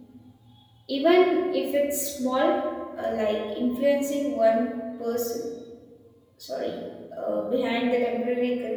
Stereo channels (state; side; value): identical; both; correlation 1.00